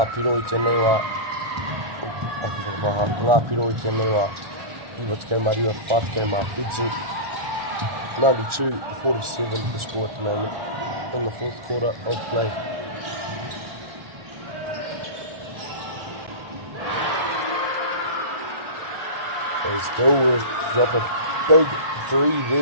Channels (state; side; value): late; left; 1.4 ms